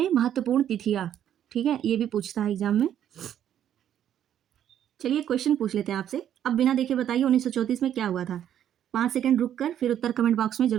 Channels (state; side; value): quieter; left; 10.3 dB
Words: महत्वपूर्ण तिथियां, ठीक है। ये भी पूछता है एग्जाम में। चलिए क्वेश्चन पूछ लेते हैं आपसे। अब बिना देखे बताइए 1934 में क्या हुआ था। 5 सेकंड रुक कर फिर उत्तर कमेंट बॉक्स में